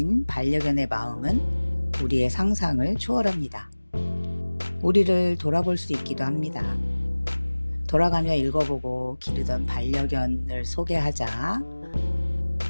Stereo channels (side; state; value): both; inverted; correlation -1.00